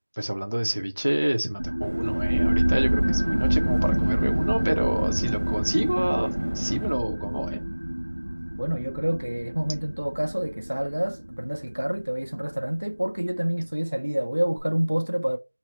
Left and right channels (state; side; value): inverted; both; correlation -1.00